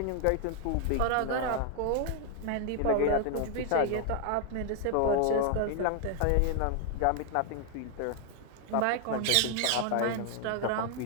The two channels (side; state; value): both; different; correlation 0.00